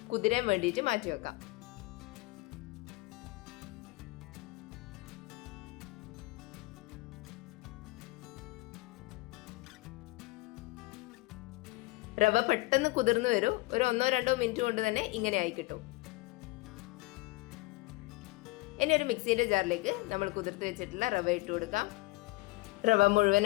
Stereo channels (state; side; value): quieter; right; 21.6 dB